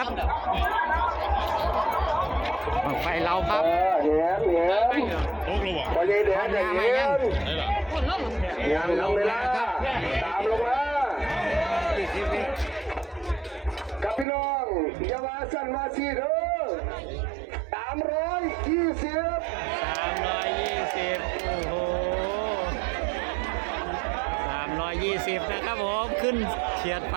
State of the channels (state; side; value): drops out; left; at 14.2 s